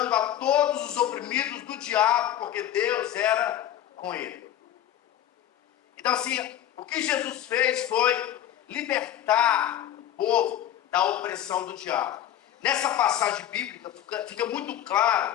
a todos os oprimidos do diabo, porque Deus era com ele. Então, assim, o que Jesus fez foi libertar o povo da opressão do diabo. Nessa passagem bíblica fica muito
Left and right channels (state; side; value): quieter; right; 11.5 dB